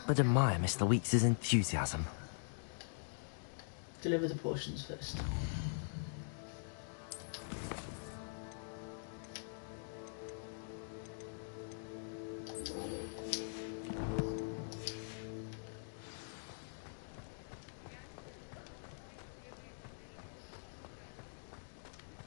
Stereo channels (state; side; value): silent; right; digital silence